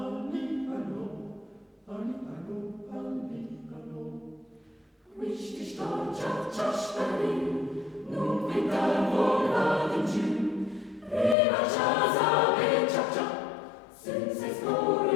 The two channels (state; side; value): drops out; right; at 11.4 s